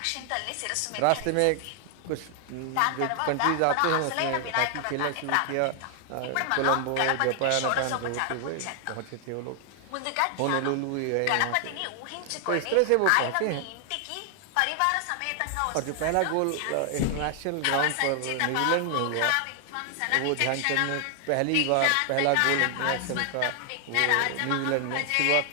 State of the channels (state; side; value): different; both; correlation 0.00